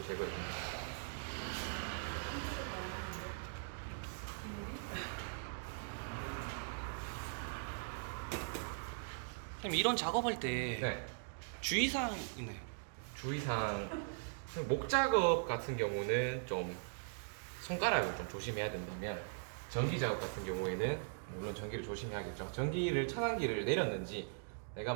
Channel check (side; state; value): left; silent; digital silence